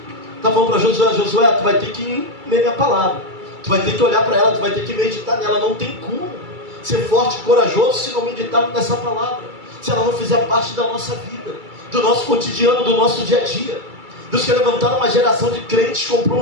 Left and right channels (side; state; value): left; late; 2.3 ms